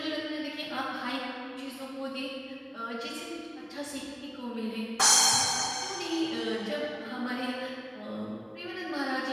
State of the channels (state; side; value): identical; both; correlation 1.00